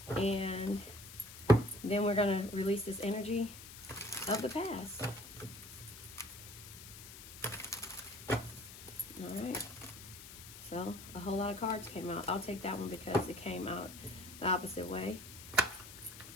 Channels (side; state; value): left; noise; hiss, 14 dB below the sound